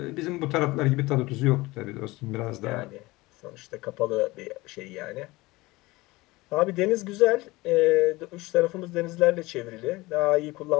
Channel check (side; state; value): right; quieter; 21.0 dB